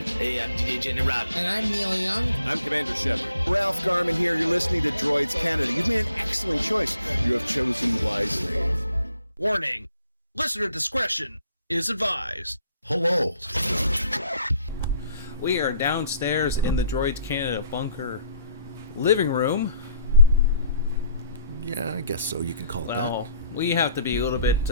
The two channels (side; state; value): both; inverted; correlation -0.64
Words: I'm DJ Jenny Rob. And I'm Neil Young. I'm Commander Shepard. Ralph Garman here. You're listening to Droids Canada. You've made an excellent choice. You have chosen wisely. Warning. Listener discretion is advised. Hello. We are downstairs in the Droids Canada bunker living room. Yeah, I guess so. You can call it Well, we have to be a little bit,